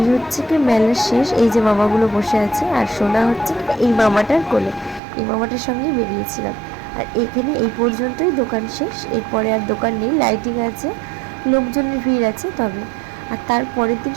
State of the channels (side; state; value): left; drops out; at 5.0 s